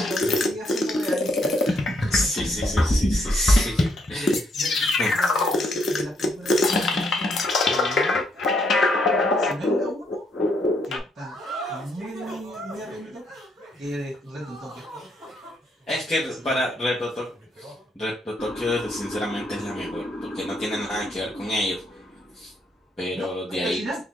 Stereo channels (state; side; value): normal; both; correlation 0.73